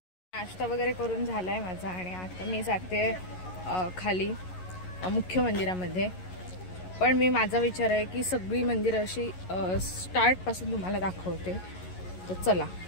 नाश्ता वगैरे करून झाला आहे माझा आणि आता मी जाते खाली मुख्य मंदिरामध्ये। पण मी माझा विचार आहे की सगळी मंदिरं अशी स्टार्टपासून तुम्हाला दाखवते। तर चला।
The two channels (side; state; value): right; late; 11 ms